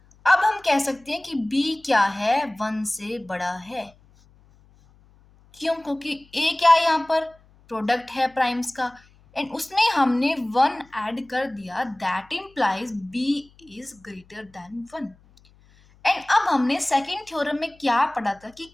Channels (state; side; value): noise; left; hum, 29 dB below the sound